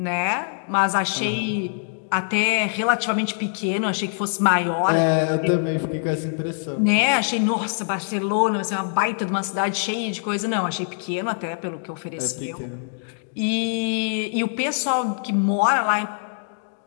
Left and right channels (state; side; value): silent; right; digital silence